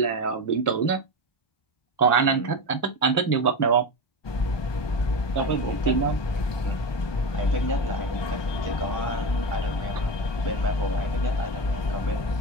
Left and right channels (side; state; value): right; late; 1.2 ms